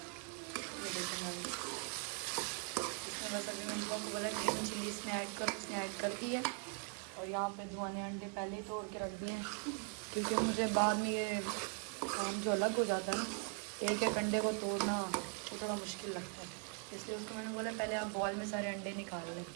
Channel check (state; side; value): quieter; left; 37.4 dB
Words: इसमें बस अभी मैंने दुआ को बोला ग्रीन चिली इसमें ऐड करो, उसने ऐड कर दी है। और यहाँ पे दुआ ने अंडे पहले ही तोड़ के रख दिए हैं क्योंकि मुझे बाद में ये काम जो अलग हो जाता है ना, एक एक अंडे को तोड़ना तो थोड़ा मुश्किल लगता है, इसलिए उसको मैंने बोला पहले आप बॉल में सारे अंडे निकाल लें।